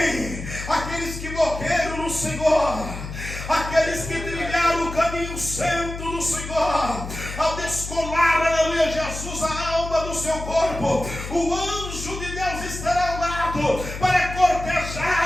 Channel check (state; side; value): noise; left; hum, 9 dB below the sound